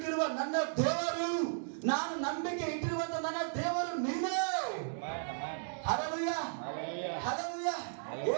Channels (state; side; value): silent; left; digital silence